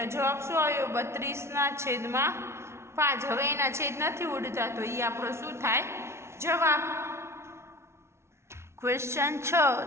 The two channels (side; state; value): left; late; 0.13 ms